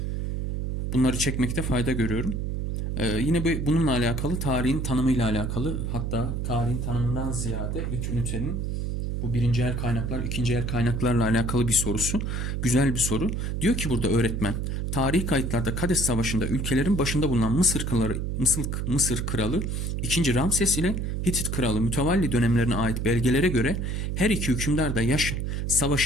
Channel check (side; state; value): right; noise; hum, 2 dB below the sound